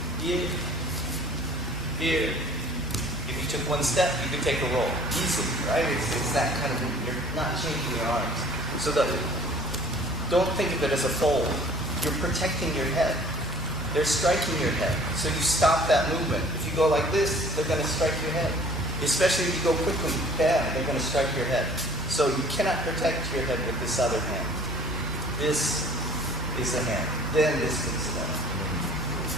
Here. Here. If you took one step, you could take a roll easily, right? It's that kind of, you're not changing your arms. So don't think of it as a fold. You're protecting your head. They're striking your head. So you stop that movement. If you go like this, they're going to strike your head. Especially if you go quickly, bam, they're going to strike your head. So you cannot protect your head with this other hand. This is the hand. Then this picks it up.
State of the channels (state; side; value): normal; both; correlation 0.51